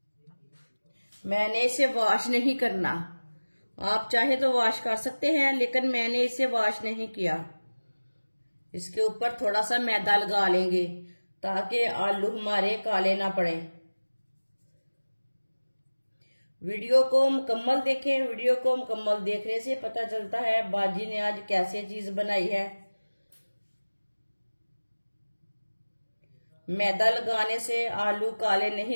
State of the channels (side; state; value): both; inverted; correlation -1.00